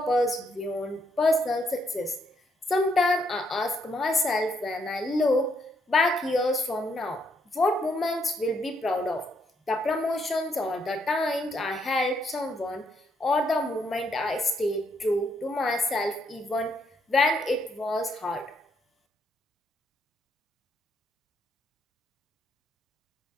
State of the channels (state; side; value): normal; both; correlation 0.74